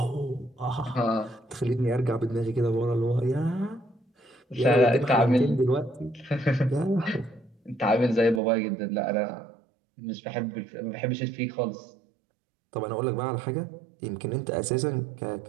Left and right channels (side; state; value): left; drops out; at 8.4 s